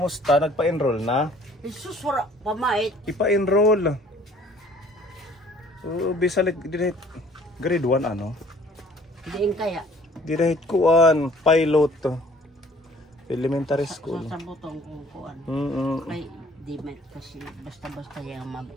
Nagpa-enroll na? Jesus, wala pamait. Ipa-enroll. Bisalit, grade 1 ano? Diin kaya. Direct kuan, pilot. Elementary school. Sa butong kung kuan. Ay, di may kasi basta-basta yung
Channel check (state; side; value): normal; both; correlation 0.55